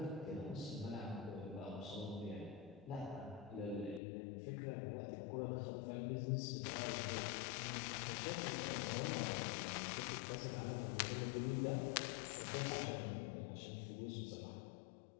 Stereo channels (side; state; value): right; drops out; at 4.0 s